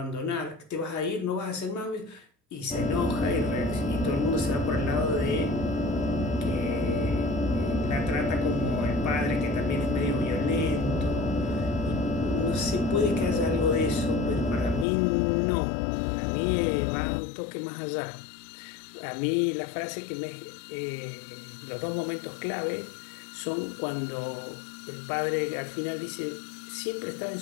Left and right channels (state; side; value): drops out; right; at 14.9 s